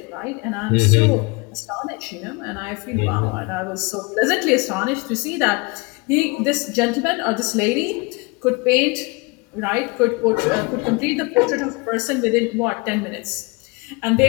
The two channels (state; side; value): quieter; right; 27.7 dB